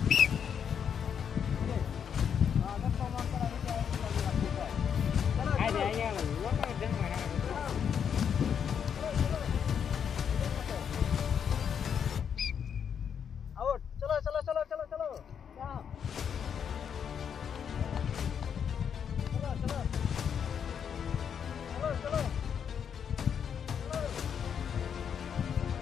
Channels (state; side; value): quieter; right; 7.7 dB